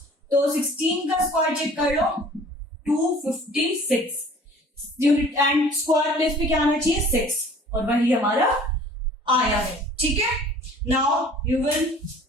तो 16 का स्क्वायर चेक कर लो, 256 यूनिट, एंड स्क्वायर प्लेस पे क्या आना चाहिए? 6, और वही हमारा आया है। ठीक है, now you will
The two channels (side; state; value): both; normal; correlation 0.49